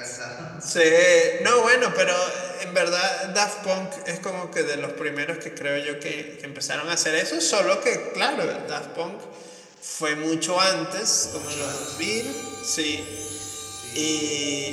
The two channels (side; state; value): both; identical; correlation 1.00